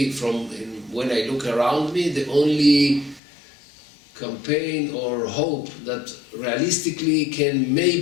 from when I look around me, the only campaign or hope that realistically can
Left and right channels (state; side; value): drops out; right; at 3.2 s